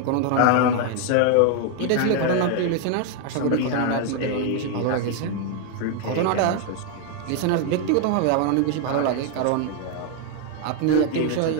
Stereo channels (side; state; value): both; different; correlation 0.00